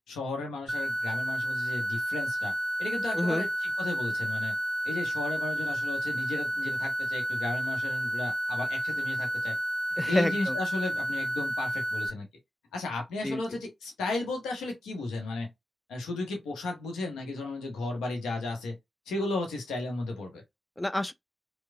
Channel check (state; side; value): normal; both; correlation 0.92